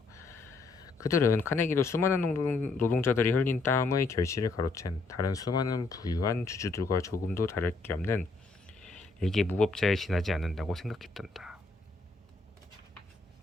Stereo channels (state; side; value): quieter; right; 3.7 dB